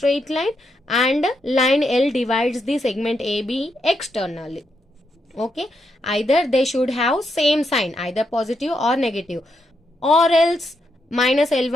line and line L divides the segment AB externally. Okay, either they should have same sign, either positive or negative, or else minus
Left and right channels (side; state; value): both; normal; correlation 0.81